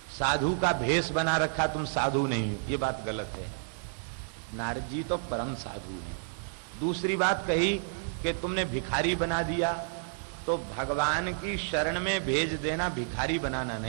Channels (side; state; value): left; silent; 57 dB below the other